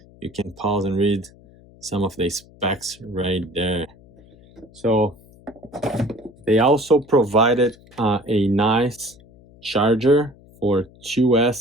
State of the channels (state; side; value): noise; left; hum, 25 dB below the sound